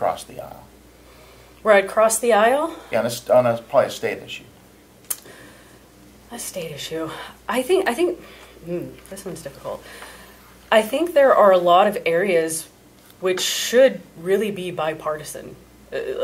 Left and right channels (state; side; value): identical; both; correlation 1.00